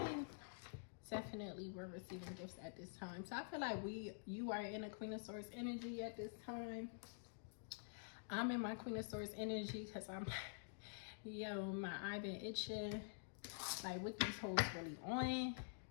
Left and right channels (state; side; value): silent; right; digital silence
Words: definitely we're receiving gifts at this time. So I feel like you are in a Queen of Swords energy at this time. I'm in my Queen of Swords energy because I'm, yo, my eye been itching. Like, what these hoes really on?